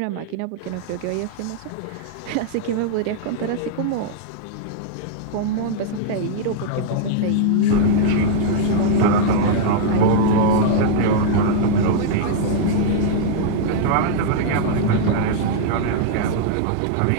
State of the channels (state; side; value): different; both; correlation -0.01